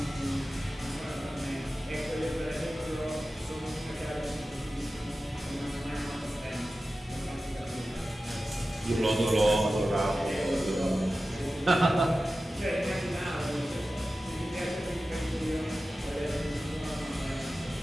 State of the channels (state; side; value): normal; both; correlation 0.94